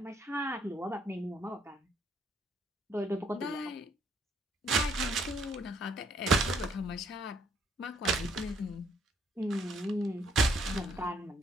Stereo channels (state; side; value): normal; both; correlation 0.67